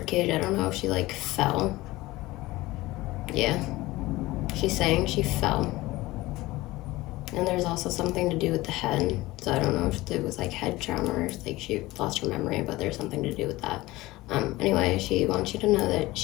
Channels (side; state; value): right; quieter; 19.1 dB